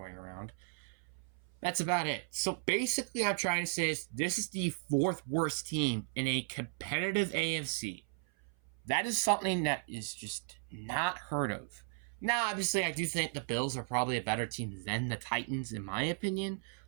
around. That's about it. So basically, I'm trying to say is this is the fourth worst team in a competitive AFC. That is something that is just not heard of. Now, obviously, I do think the Bills are probably a better team than the Titans, in my opinion.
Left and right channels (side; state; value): left; silent; 54 dB below the other